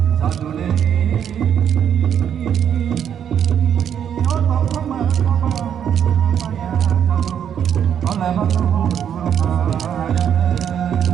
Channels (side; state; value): left; quieter; 8.8 dB